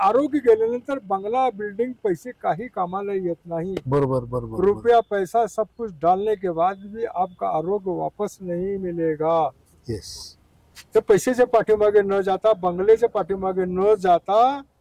गेल्यानंतर बंगला बिल्डिंग पैसे काही कामाला येत नाही। बरोबर बरोबर रुपया पैसा सब कुछ डालने के बाद भी आपका आरोग्य वापस नहीं मिलेगा। येस तर पैशाच्या पाठीमागे न जाता, बंगल्याच्या पाठीमागे न जाता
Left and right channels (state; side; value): identical; both; correlation 1.00